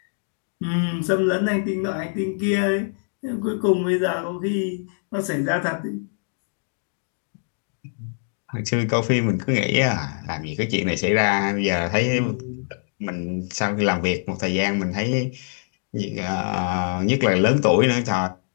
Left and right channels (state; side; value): silent; right; digital silence